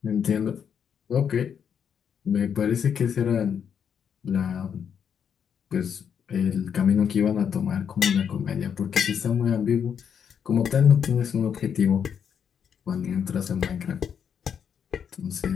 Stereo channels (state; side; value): quieter; right; 7.7 dB